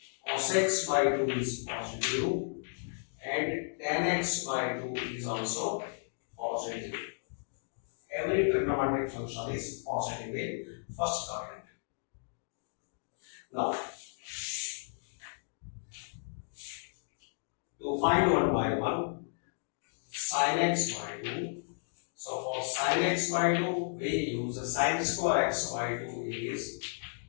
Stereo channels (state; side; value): silent; right; digital silence